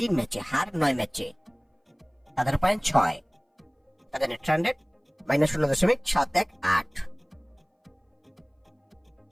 ম্যাচে, হার 9 ম্যাচে। তাদের পয়েন্ট 6, তাদের net run rate -0.718।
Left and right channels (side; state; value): both; identical; correlation 1.00